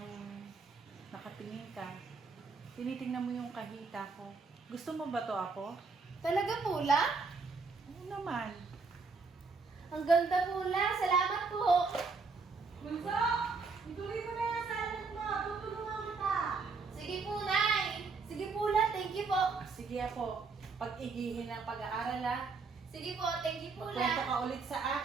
nakatingin ka, tinitingnan mo yung kahita ko. Gusto mo ba to, Apo? Talaga po lang? Oo naman. Ang ganda po lang, salamat po! Bunso, ituloy mo na yung salad mo. Tutulungan kita. Sige po, Nay! Sige po lang, thank you po! Sige, Apo, pag-igihin ang pag-aaral, ha? Sige po, thank you po Kwento lang! ka ulit sa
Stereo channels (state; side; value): quieter; left; 4.5 dB